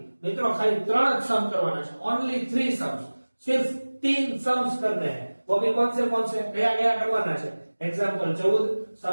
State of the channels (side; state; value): both; inverted; correlation -1.00